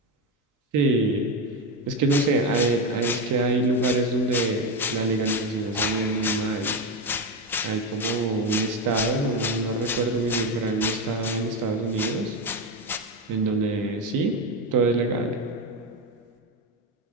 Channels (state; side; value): normal; both; correlation 0.13